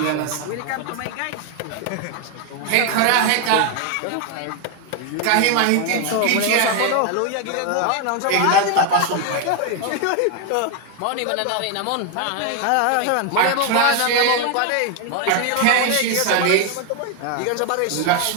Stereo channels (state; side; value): different; both; correlation 0.01